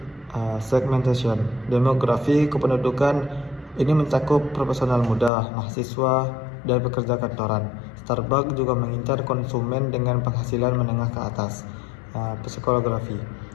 segmentation, demografi kependudukan. Ini mencakup profesional muda, mahasiswa, dan pekerja kantoran. Starbucks juga mengincar konsumen dengan penghasilan menengah ke atas. Psikologi,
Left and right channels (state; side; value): drops out; right; at 5.3 s